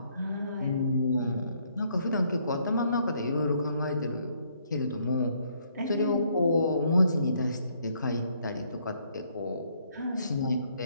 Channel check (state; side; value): inverted; both; correlation -0.69